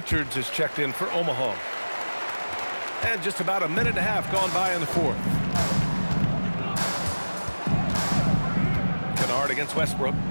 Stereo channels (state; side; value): inverted; both; correlation -1.00